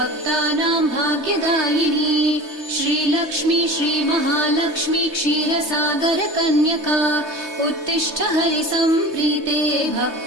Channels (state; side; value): late; left; 3.3 ms